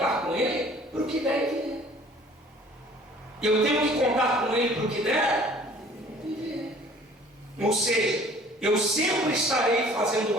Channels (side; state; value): both; normal; correlation 0.51